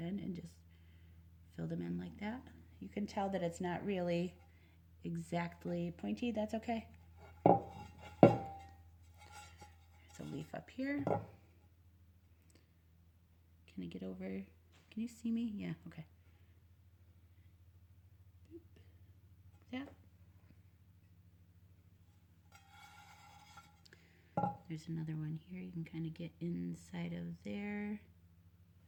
and just fill them in like that. You can tell that it's not really exactly pointy. That's okay. There's a leaf up here. Can I get over? Can you see me? Yeah, okay. Yeah. There's another one here. You can kind of get inside of there.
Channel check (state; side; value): identical; both; correlation 1.00